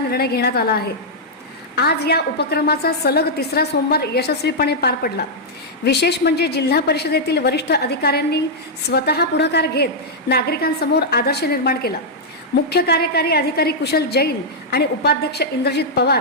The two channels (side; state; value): both; normal; correlation -0.06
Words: घेण्यात आला आहे। आज या उपक्रमाचा सलग तिसरा सोमवार यशस्वीपणे पार पडला। विशेष म्हणजे जिल्हा परिषदेतील वरिष्ठ अधिकाऱ्यांनी स्वतः पुढाकार घेत नागरिकांसमोर आदर्श निर्माण केला। मुख्य कार्यकारी अधिकारी कुशल जैन आणि उपाध्यक्ष इंद्रजित